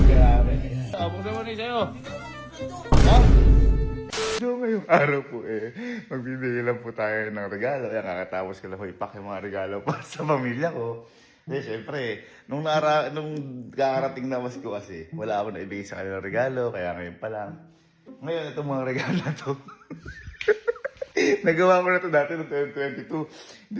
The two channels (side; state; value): both; identical; correlation 1.00